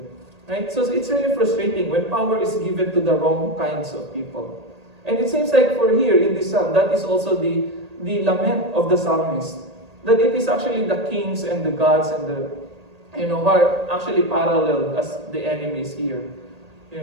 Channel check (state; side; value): late; left; 1.8 ms